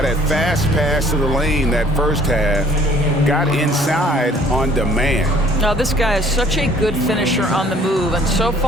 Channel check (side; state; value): both; normal; correlation 0.56